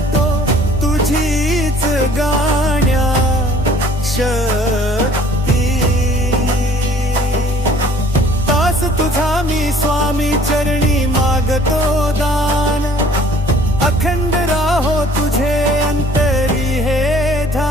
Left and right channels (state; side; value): normal; both; correlation 0.54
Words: तुझीच गाण्या शक्ती तास तुझा मी स्वामी चरणी मागतो दान अखंड राहो तुझे अंतरी हे